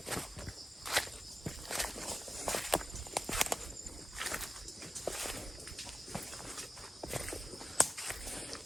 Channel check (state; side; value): normal; both; correlation 0.94